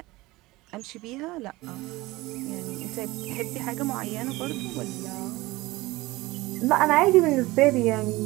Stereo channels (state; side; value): quieter; left; 20.2 dB